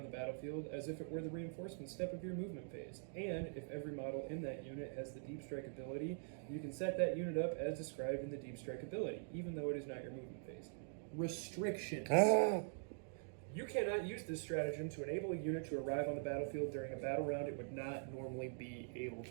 the battlefield as if it were the reinforcement step of your movement phase. And if every model in that unit has the Deep Strike ability, you can set that unit up as described in the Deep Strike ability, even though it is not your movement phase. Restrictions. You cannot use this stratagem to enable a unit to arrive on the battlefield during a battle round. It would not normally be able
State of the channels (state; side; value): silent; left; digital silence